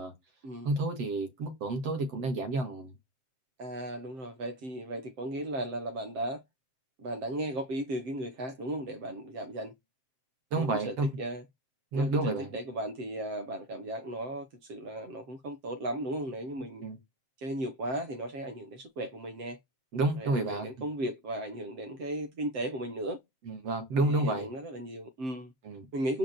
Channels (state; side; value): late; left; 7.7 ms